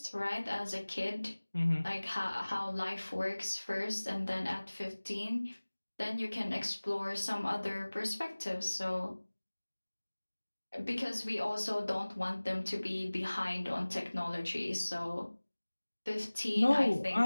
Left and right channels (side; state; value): both; inverted; correlation -1.00